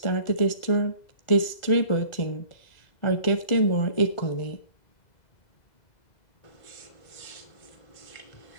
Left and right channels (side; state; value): right; late; 2.0 ms